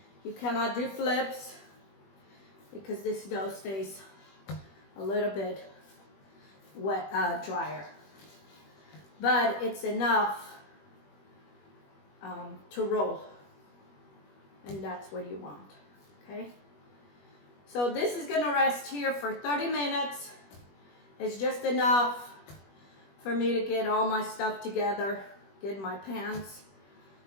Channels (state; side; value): late; right; 21 ms